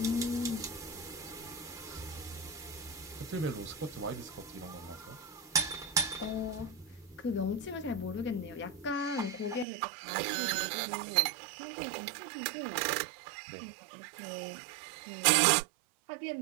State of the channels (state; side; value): drops out; left; at 9.7 s